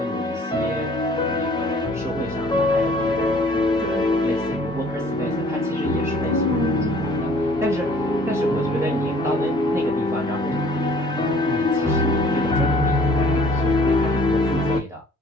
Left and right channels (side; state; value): both; normal; correlation 0.55